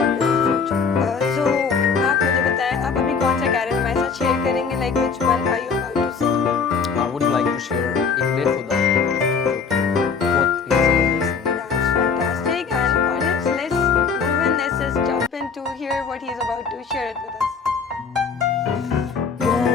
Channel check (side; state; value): right; quieter; 5.6 dB